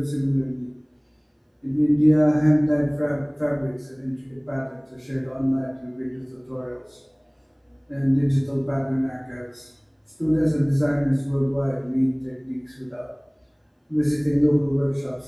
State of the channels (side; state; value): both; identical; correlation 1.00